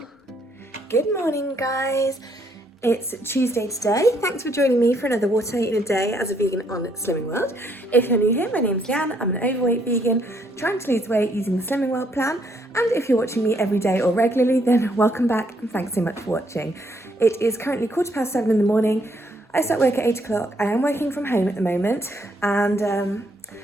Good morning, guys. It's Tuesday today. Thanks for joining me for another What I Eat in a Day as a vegan on Slimming World. If you're new here, my name's Leanne. I'm an overweight vegan trying to lose weight using the Slimming World plan. And if you're watching me every day or regularly, then welcome back and thanks so much for watching. It is currently 7:15 in the morning. I start work at 8 o'clock. I am working from home at the moment and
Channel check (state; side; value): normal; both; correlation 0.71